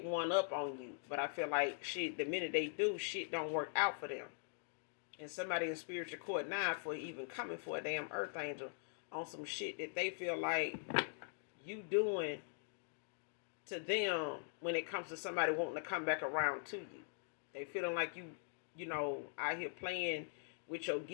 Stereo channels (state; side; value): silent; right; digital silence